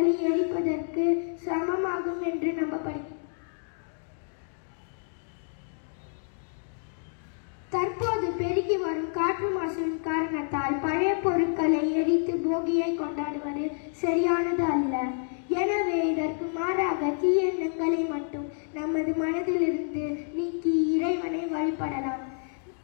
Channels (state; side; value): silent; right; digital silence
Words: எரிப்பதற்கு சமமாகும் என்று நம்பப்படுகிறது. தற்போது பெருகி வரும் காற்று மாசின் காரணத்தால் பழைய பொருட்களை எரித்து போகியை கொண்டாடுவது சரியானது அல்ல. எனவே இதற்கு மாறாக தீய எண்ணங்களை மட்டும் நமது மனதிலிருந்து நீக்கி இறைவனை வழிபடலாம்.